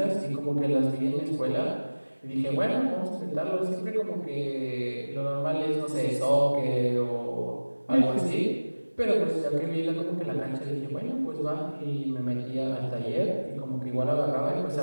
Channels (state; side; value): inverted; both; correlation -1.00